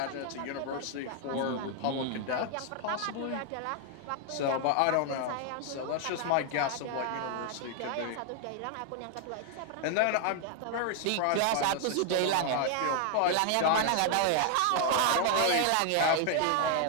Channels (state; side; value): different; both; correlation 0.00